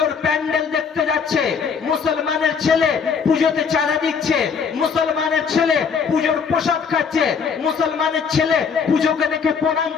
প্যান্ডেল দেখতে যাচ্ছে, মুসলমানের ছেলে পুজোতে চাঁদা দিচ্ছে, মুসলমানের ছেলে পুজোর প্রসাদ খাচ্ছে, মুসলমানের ছেলে পুজোকে দেখে প্রণাম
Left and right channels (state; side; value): quieter; right; 6.1 dB